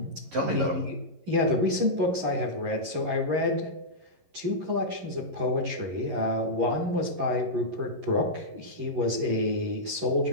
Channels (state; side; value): late; left; 11 ms